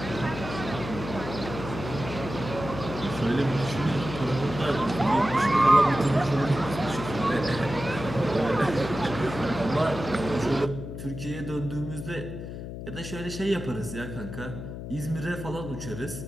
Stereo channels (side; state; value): left; noise; hum, 8 dB below the sound